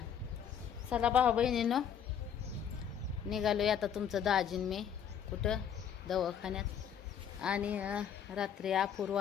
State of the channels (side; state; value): right; quieter; 8.4 dB